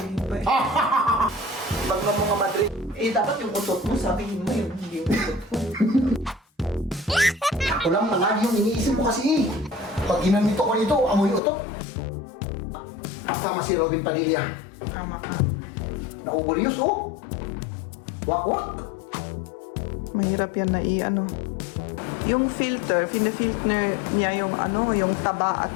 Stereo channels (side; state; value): right; drops out; at 11.4 s